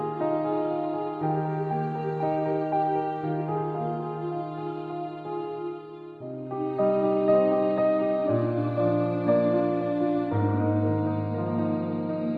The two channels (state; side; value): identical; both; correlation 1.00